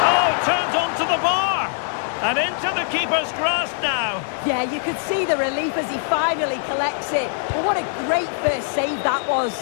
Oh, turns onto the bar. And into the keeper's grasp now. Yeah, you could see the relief as he finally collects it. But what a great first save that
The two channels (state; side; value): silent; right; digital silence